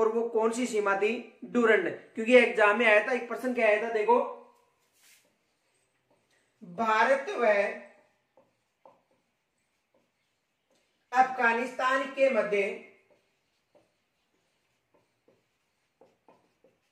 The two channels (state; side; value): identical; both; correlation 1.00